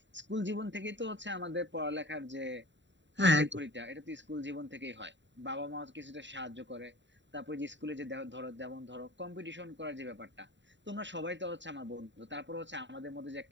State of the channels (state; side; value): late; left; 0.53 ms